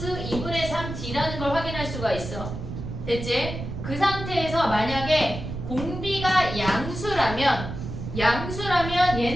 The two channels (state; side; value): noise; right; rumble, 7 dB below the sound